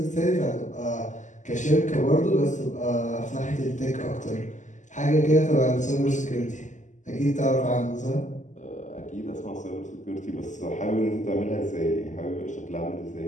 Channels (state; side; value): late; right; 0.36 ms